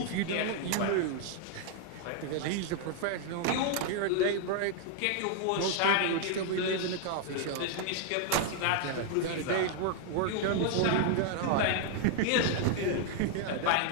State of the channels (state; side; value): different; both; correlation 0.00